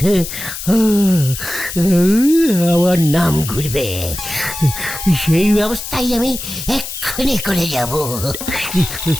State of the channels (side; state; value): left; noise; hiss, 8 dB below the sound